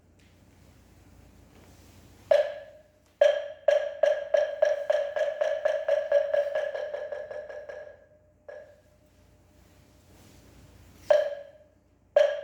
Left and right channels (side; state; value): both; identical; correlation 1.00